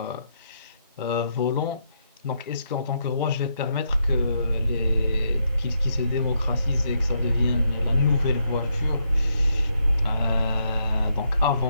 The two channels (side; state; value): both; inverted; correlation -0.78